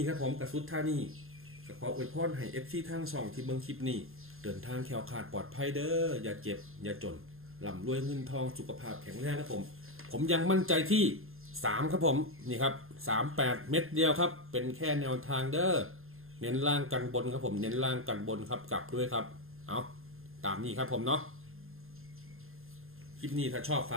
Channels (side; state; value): left; late; 0.61 ms